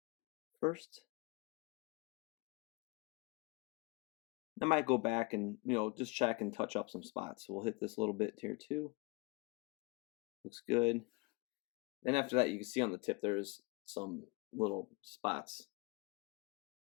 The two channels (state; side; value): quieter; right; 25.9 dB